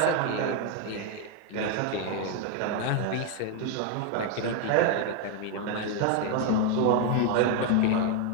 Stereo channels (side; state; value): both; different; correlation 0.01